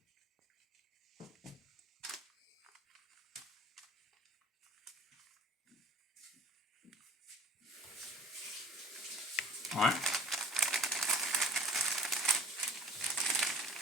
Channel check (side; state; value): both; normal; correlation 0.48